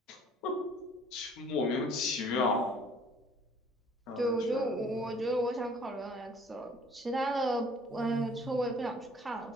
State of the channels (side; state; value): both; normal; correlation 0.55